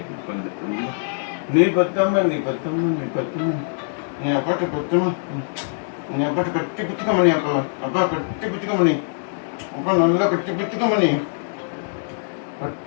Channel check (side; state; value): right; silent; digital silence